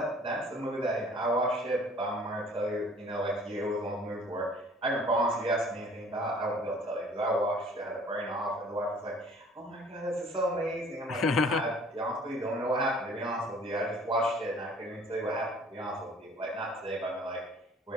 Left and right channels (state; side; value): normal; both; correlation 0.53